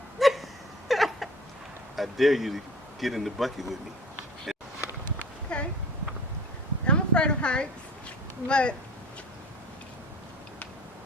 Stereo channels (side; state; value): both; normal; correlation 0.43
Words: I dare you to get in the bucket with me. Okay. I'm afraid of heights, but